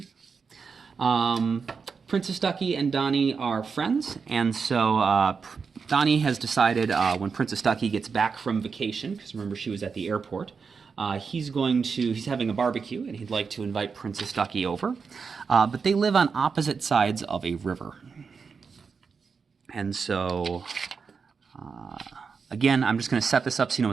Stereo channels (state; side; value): quieter; left; 5.4 dB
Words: Princess Ducky and Donnie are friends, and so Donnie has decided when Princess Ducky gets back from vacation, because remember she was at the airport, he's having a barbecue, and he'd like to invite Princess Ducky over. But they live on opposite sides of a river. And so, again, I'm just going to set this up so you know